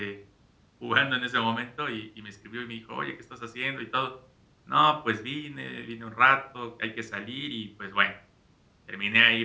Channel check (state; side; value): identical; both; correlation 1.00